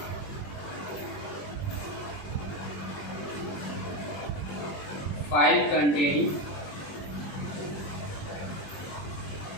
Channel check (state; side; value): late; right; 21 ms